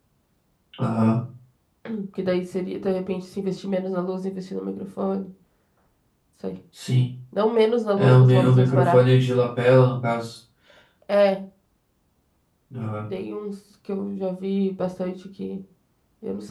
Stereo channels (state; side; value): identical; both; correlation 1.00